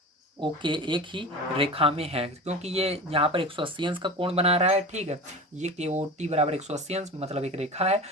OK एक ही रेखा में है, क्योंकि ये यहाँ पर 180 अंश का कोण बना रहा है। ठीक है, ये KOT बराबर 180 अंश मतलब एक रेखा है,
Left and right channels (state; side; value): normal; both; correlation 0.31